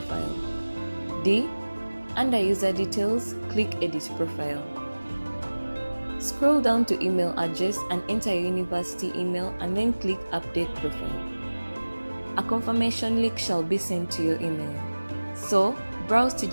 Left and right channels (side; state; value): both; inverted; correlation -1.00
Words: D. Under User Details, click Edit Profile. Scroll down to Email Address and enter your university email and then click Update Profile. A confirmation link shall be sent to your email. So, browse to